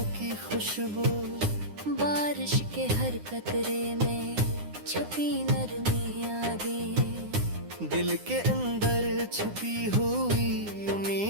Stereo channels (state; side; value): late; left; 9.8 ms